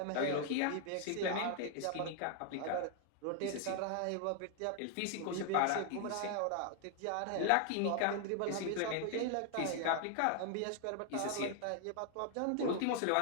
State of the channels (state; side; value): different; both; correlation 0.00